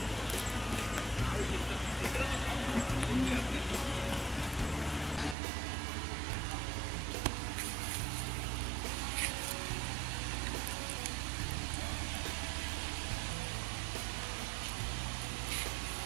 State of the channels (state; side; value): drops out; left; at 5.4 s